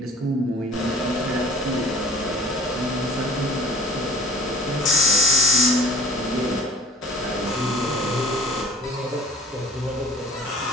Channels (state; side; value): normal; both; correlation 0.47